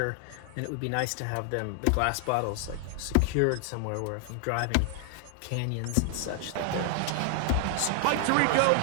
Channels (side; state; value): both; different; correlation 0.00